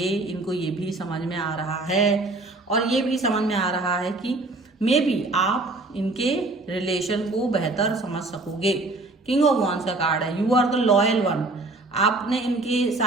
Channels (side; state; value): left; quieter; 3.1 dB